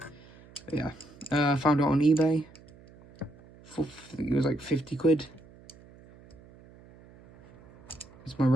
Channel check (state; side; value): noise; right; hum, 23 dB below the sound